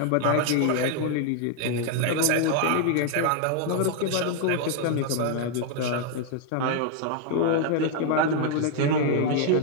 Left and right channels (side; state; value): both; different; correlation 0.00